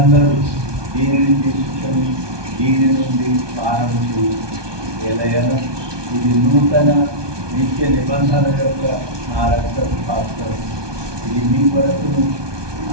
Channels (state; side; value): late; left; 1.2 ms